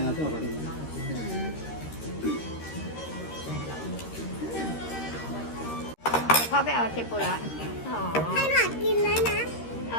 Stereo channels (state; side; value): late; right; 13 ms